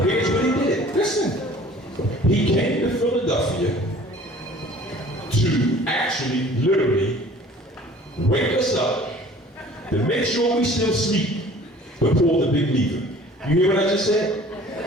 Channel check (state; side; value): normal; both; correlation 0.49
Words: here's what he did. Listen, he came to Philadelphia to actually, literally, wake us up, to make sure we still sleep, but pull the big lever. You hear what I just said?